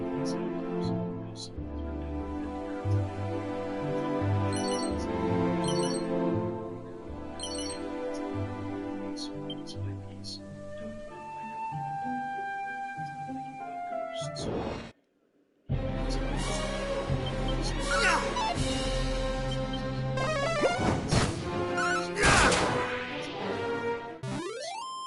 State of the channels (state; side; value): identical; both; correlation 1.00